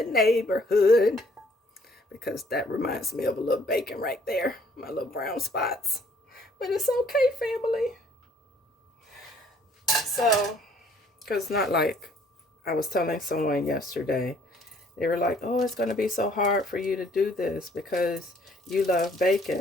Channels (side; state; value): both; normal; correlation 0.61